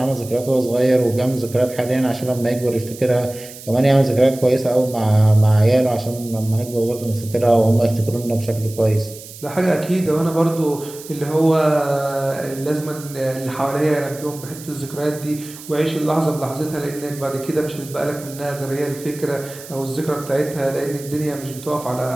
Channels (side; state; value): right; noise; hiss, 16 dB below the sound